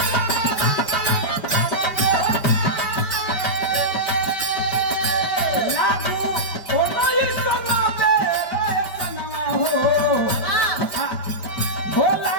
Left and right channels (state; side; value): late; right; 5.1 ms